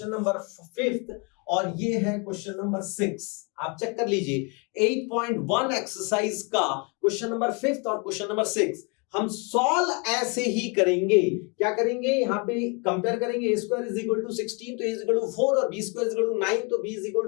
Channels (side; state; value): right; quieter; 32.8 dB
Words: नंबर 5th, और ये है क्वेश्चन नंबर 6। आप चेक कर लीजिए 8.1 एक्सरसाइज का क्वेश्चन नंबर 5th और क्वेश्चन नंबर 6 हम सॉल्व ऐसे ही करेंगे। क्या करेंगे? यहाँ पे कंपेयर करेंगे, a square is equal to 16 तो a इज इक्वल टू 4 और b square is equal to 9 तो b इज इक्वल